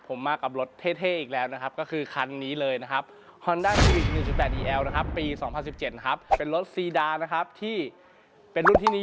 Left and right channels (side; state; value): both; identical; correlation 1.00